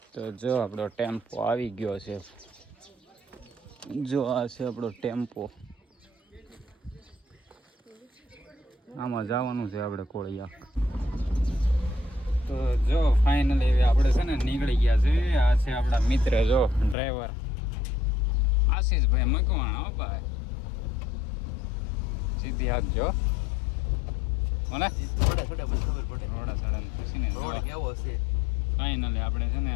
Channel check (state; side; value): drops out; right; at 16.9 s